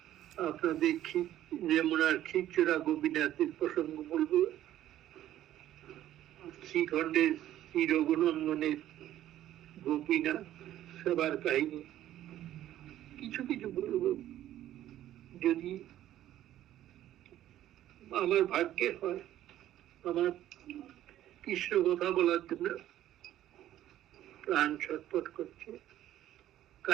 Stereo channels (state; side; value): quieter; left; 12.8 dB